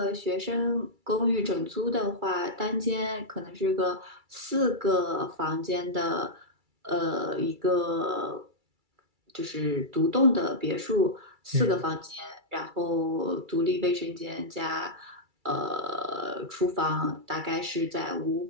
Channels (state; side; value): late; left; 2.3 ms